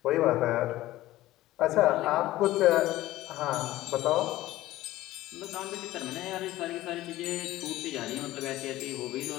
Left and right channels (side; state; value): right; quieter; 16.1 dB